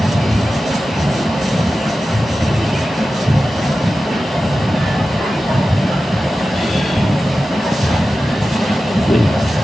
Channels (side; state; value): both; normal; correlation 0.94